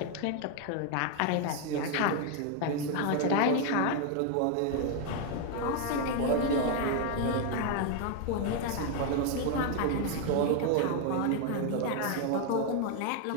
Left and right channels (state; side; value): different; both; correlation 0.01